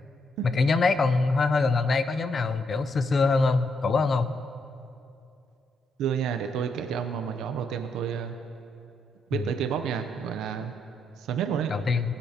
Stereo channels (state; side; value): normal; both; correlation 0.77